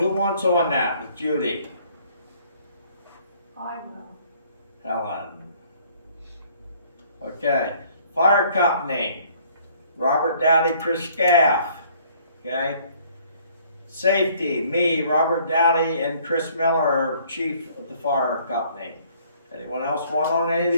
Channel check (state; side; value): inverted; both; correlation -0.59